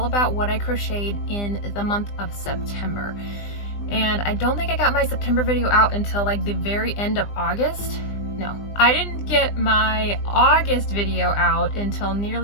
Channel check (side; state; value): right; late; 20 ms